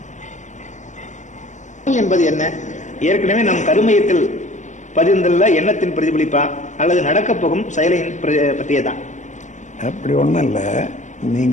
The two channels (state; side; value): late; right; 0.35 ms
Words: என்பது என்ன? ஏற்கனவே நம் கருமையத்தில் பதிந்துள்ள எண்ணத்தின் பிரதிபலிப்பா அல்லது நடக்கப் போகும் செயலின் பற்றியதான்? அப்படி ஒன்றும் இல்லை.